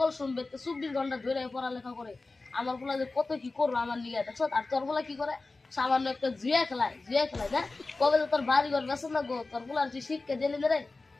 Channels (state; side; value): quieter; right; 3.5 dB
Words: শুনবে তো 24 ঘন্টা ধরে পড়ালেখা করে। আমার পোলা যে কত কি করবো আমার নিয়ে দেখছো। আর তোর পোলা কি করে? সামান্য একটা জুয়া খেলায় না। কবে তো তোর বাড়ি ঘর বেসন না গো, তোর পোলার তুই শিক্ষা দিলি না রে।